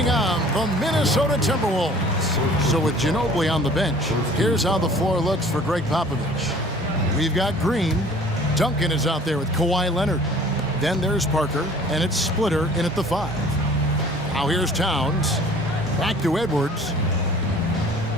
on the Minnesota Timberwolves. So with Ginobili on the bench, here's how the floor looks for Greg Popovich. We've got Green. Duncan is out there with Kawhi Leonard. Then there's Parker, and it's Splitter in at the 5. Now here's Towns. Back to Edwards.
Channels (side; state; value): both; normal; correlation 0.50